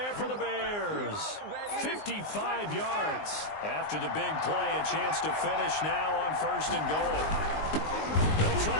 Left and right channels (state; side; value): late; right; 19 ms